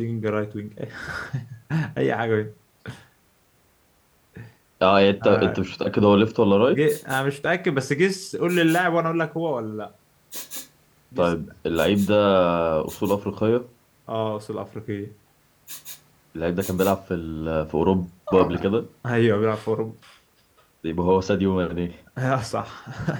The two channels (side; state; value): both; identical; correlation 1.00